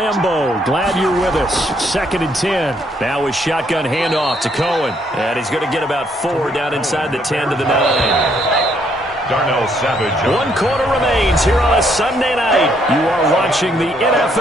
Glad you're with us. 2nd and 10. Now with shotgun handoff to Cohen. And he's going to get about 4 down inside the 10 to the 9. Darnell Savage. 1 quarter remains here on a Sunday night. You are watching the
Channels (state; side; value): normal; both; correlation 0.70